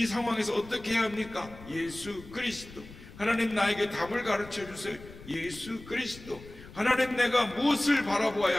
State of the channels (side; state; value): left; noise; rumble, 17 dB below the sound